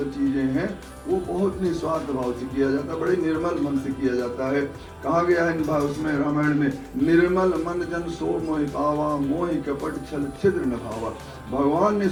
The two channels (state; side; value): identical; both; correlation 1.00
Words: चीजें हैं वो बहुत निस्वार्थ भाव से किया जाता है, बड़े निर्मल मन से किया जाता है। कहा गया है उसमें रामायण में, निर्मल मन जन सो मोहि पावा, मोहि कपट छल छिद्र न भावा। भगवान ने